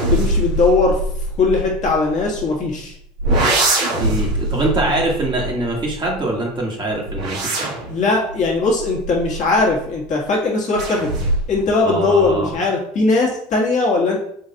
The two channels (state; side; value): normal; both; correlation 0.33